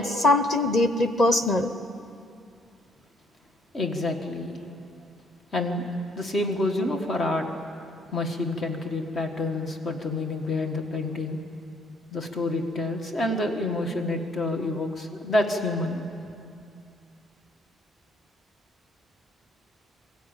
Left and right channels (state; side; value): normal; both; correlation 0.64